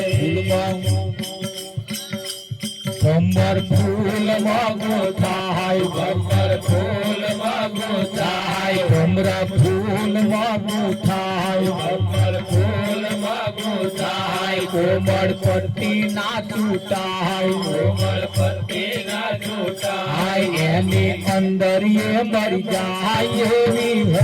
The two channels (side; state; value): both; identical; correlation 1.00